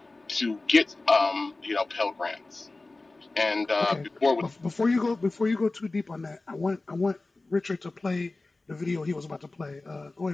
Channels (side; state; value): right; quieter; 3.2 dB